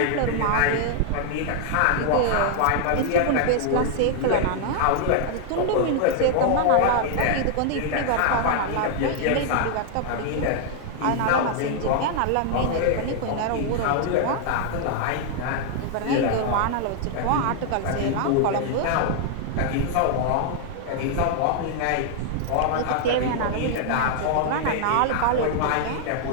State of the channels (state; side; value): different; both; correlation 0.00